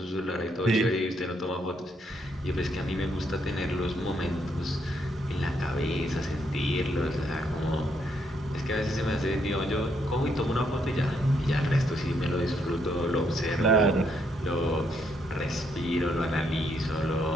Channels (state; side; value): normal; both; correlation 0.74